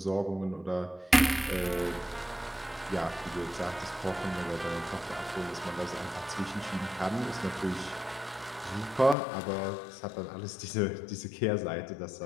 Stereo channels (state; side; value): drops out; right; at 9.2 s